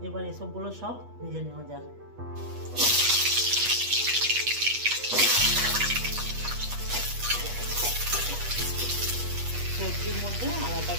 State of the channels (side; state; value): left; late; 8.3 ms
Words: এবার এসবগুলো সব ভেজে নেওয়া যাক। সবজির মধ্যে